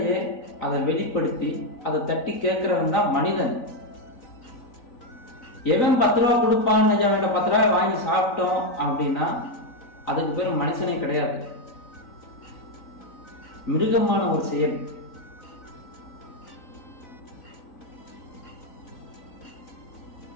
அதை வெளிப்படுத்தி அதை தட்டி கேட்கிறவன் தான் மனிதன். எவன் 10 ரூபா கொடுப்பான், அவன் 10 ரூபாய் வாங்கி சாப்பிட்டோம் அப்படின்னா அதுக்கு பேர் மனுஷனே கிடையாது, மிருகமான ஒரு செயல்.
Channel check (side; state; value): right; late; 3.9 ms